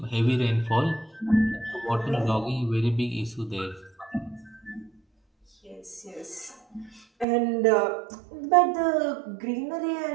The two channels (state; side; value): drops out; left; at 7.2 s